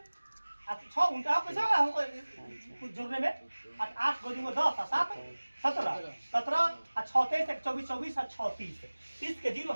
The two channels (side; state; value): both; inverted; correlation -1.00